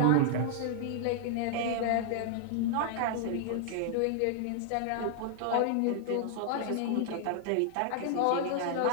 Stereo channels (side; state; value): both; different; correlation -0.01